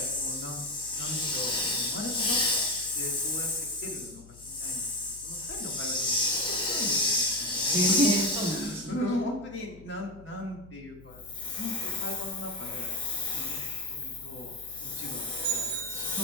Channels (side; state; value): left; noise; hum, 20 dB below the sound